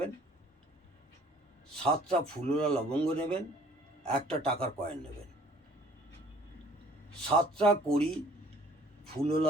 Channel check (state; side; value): normal; both; correlation 0.55